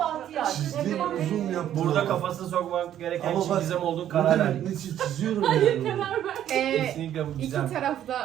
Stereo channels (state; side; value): quieter; left; 11.1 dB